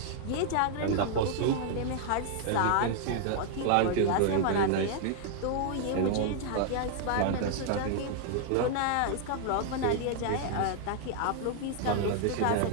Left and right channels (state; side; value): different; both; correlation 0.00